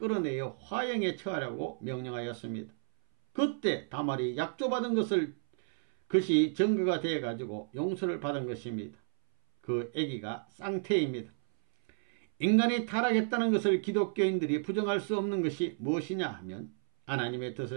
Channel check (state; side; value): silent; left; 57 dB below the other